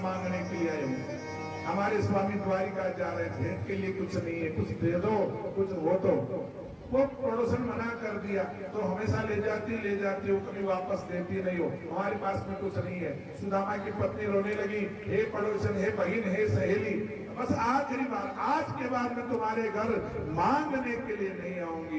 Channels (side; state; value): both; identical; correlation 1.00